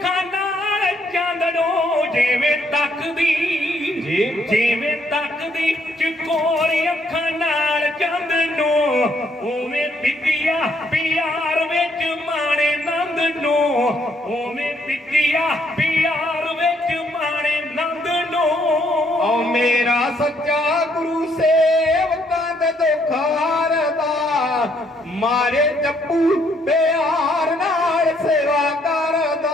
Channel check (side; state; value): both; normal; correlation 0.70